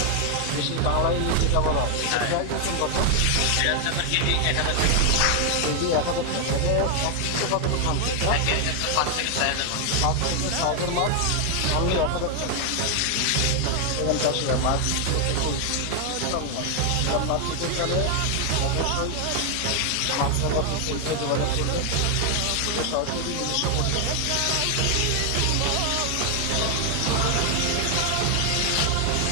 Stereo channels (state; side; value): different; both; correlation 0.00